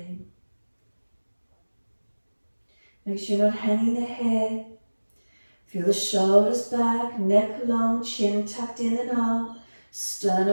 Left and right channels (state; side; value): inverted; both; correlation -1.00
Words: Make sure you're not hanging the head. Feel the shoulders back, neck long, chin tucked in and up,